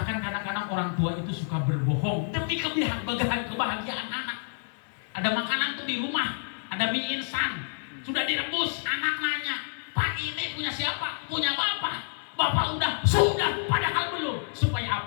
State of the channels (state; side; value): silent; right; 59 dB below the other